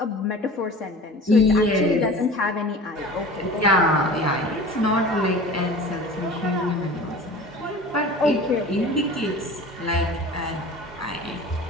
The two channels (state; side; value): normal; both; correlation 0.39